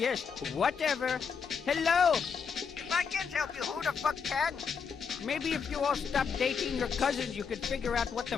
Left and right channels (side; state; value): right; quieter; 6.2 dB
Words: whatever. Hello. If I can't help you, who the fuck can? Maybe if you all stop dating your cousins, you could figure out what